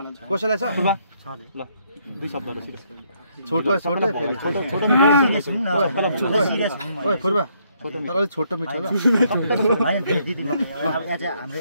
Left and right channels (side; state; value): both; inverted; correlation -0.71